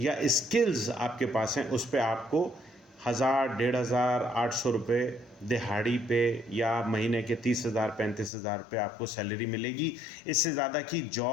स्किल्स आपके पास हैं, उस पे आपको 1000, 1500, 800 रुपये दिहाड़ी पे या महीने के 30,000, 35,000 रुपये आपको सैलरी मिलेगी। इससे ज़्यादा की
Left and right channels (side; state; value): right; drops out; at 8.3 s